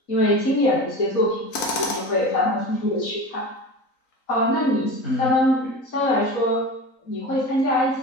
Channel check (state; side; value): late; right; 3.9 ms